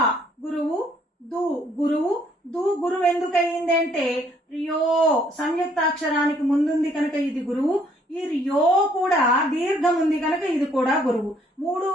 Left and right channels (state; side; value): normal; both; correlation 0.65